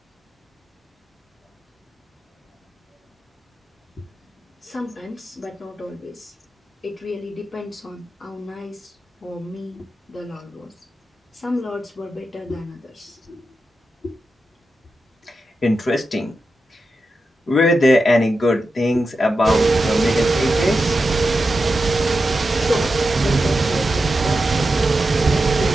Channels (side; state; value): both; normal; correlation 0.89